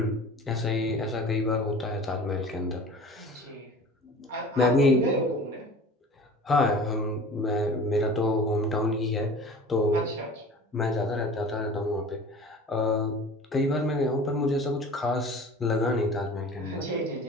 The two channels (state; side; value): normal; both; correlation 0.41